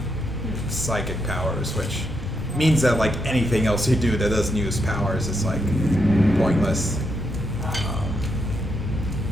psychic powers, which means that like anything else you do that doesn't use powers is like pointless.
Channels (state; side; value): normal; both; correlation 0.81